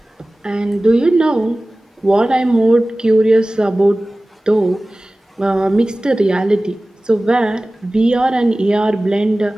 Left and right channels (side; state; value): both; normal; correlation 0.97